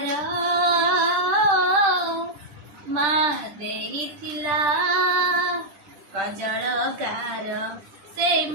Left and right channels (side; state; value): left; late; 10 ms